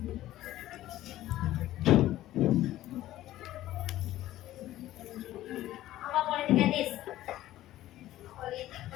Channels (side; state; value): right; quieter; 14.6 dB